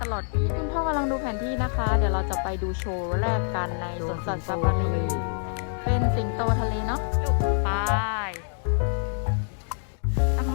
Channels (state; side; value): silent; right; digital silence